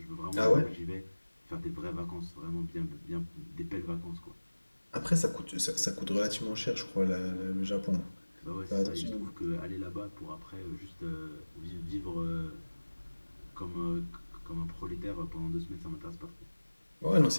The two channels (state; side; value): inverted; both; correlation -1.00